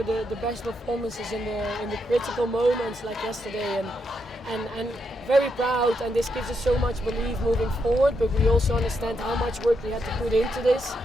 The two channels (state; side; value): normal; both; correlation 0.81